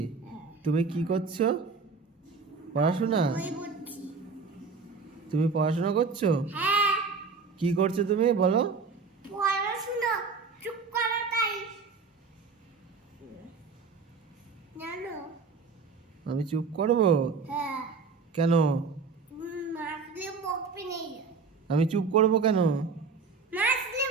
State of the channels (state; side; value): quieter; left; 4.8 dB